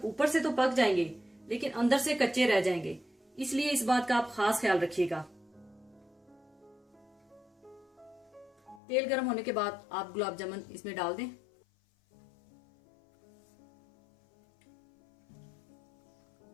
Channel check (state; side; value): drops out; right; at 8.8 s